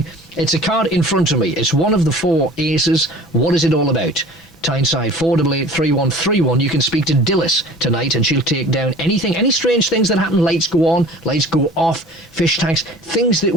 It's a card in front of me. It's one of the 4 aces. What is it all about? Tyneside 488-3131. You can speak to Dilys tonight and she'll take down anything, any strange things that happen. Lights go on, lights go off, fish tanks, things that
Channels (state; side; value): normal; both; correlation 0.44